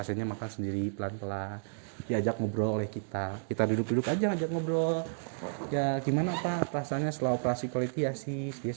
makan sendiri pelan-pelan, diajak ngobrol oleh kita duduk-duduk aja ajak ngobrol, ya gimana Pak rasanya setelah operasi koliktiasis, dia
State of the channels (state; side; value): silent; left; digital silence